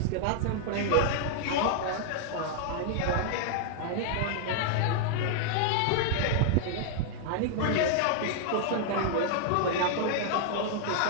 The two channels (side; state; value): both; different; correlation -0.01